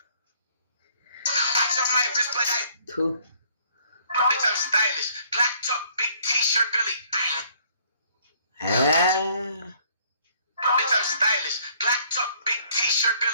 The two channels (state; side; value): inverted; both; correlation -0.61